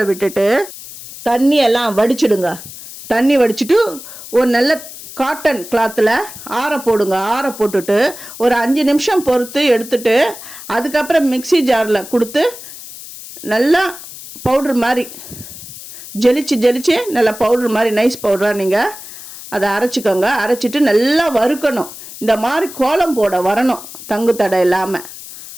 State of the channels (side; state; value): left; noise; hiss, 14 dB below the sound